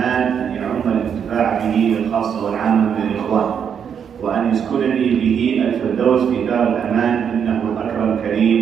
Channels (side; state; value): left; quieter; 7.7 dB